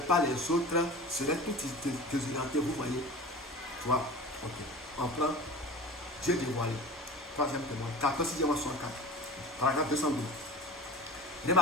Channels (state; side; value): normal; both; correlation 0.37